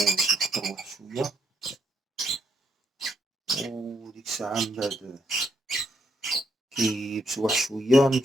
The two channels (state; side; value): normal; both; correlation 0.76